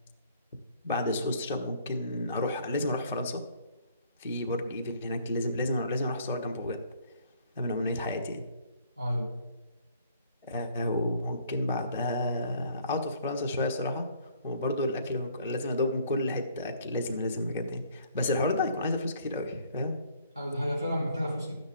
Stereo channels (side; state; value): both; inverted; correlation -0.60